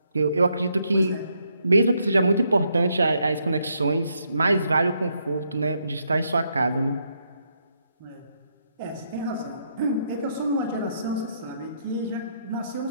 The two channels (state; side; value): inverted; both; correlation -0.76